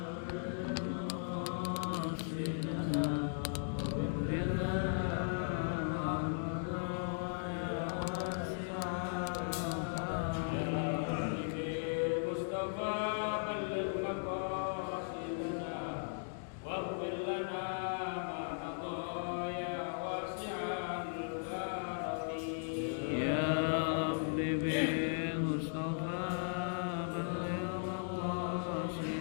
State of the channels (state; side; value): silent; right; digital silence